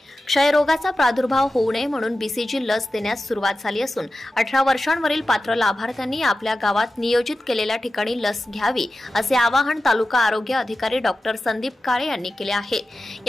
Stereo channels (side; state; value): both; normal; correlation 0.93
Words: क्षयरोगाचा प्रादुर्भाव होऊ नये म्हणून बीसीजी लस देण्यास सुरुवात झाली असून 18 वर्षांवरील पात्र लाभार्थ्यांनी आपल्या गावात नियोजित केलेल्या ठिकाणी लस घ्यावी असे आवाहन तालुका आरोग्य अधिकारी डॉक्टर संदीप काळे यांनी केले आहे.